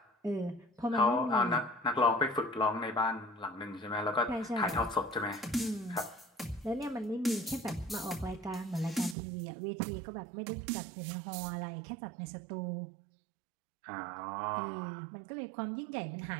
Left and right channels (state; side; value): drops out; left; at 9.2 s